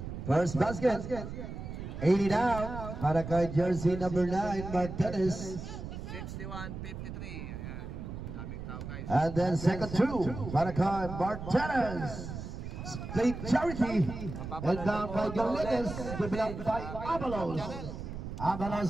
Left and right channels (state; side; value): noise; right; rumble, 8 dB below the sound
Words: First basket. 80 down para kay jersey number 9, Martinez. 61-53. Ayan, daming tao guys. And then second two para kay Martinez. Split charity. And down by Galledes. Given up by Avalos.